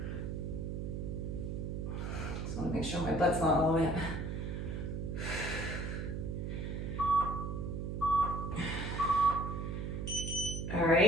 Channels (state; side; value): noise; right; hum, 3 dB below the sound